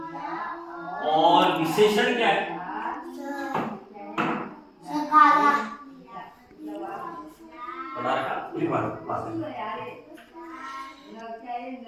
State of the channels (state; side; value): identical; both; correlation 1.00